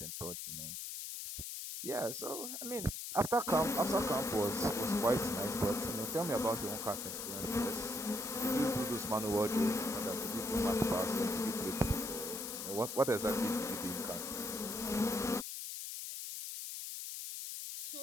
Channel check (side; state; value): left; noise; hiss, 6 dB below the sound